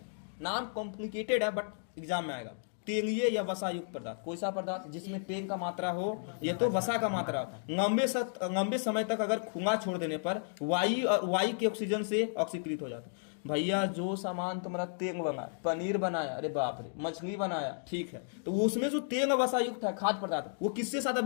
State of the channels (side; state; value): right; silent; digital silence